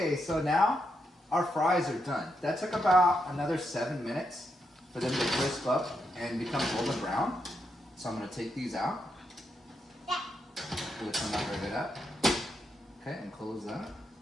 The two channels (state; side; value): normal; both; correlation 0.82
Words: so now our fries are done. That took about another 7 minutes for them to crisp up and become golden brown. So I'm gonna take these out. Which I'm not ready up. Okay, and close that.